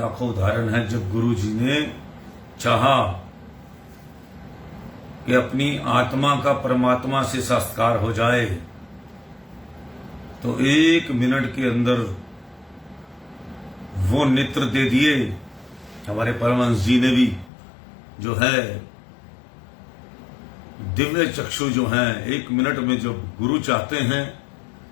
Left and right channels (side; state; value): right; drops out; at 17.5 s